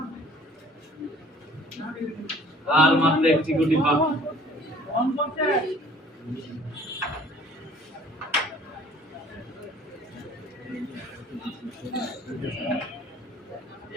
আর মাত্র একটি গুটি বাকি। অন করতে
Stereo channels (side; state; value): both; normal; correlation 0.52